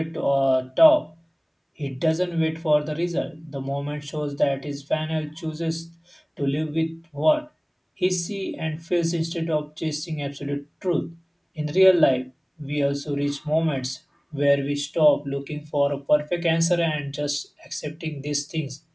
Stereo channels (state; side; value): identical; both; correlation 1.00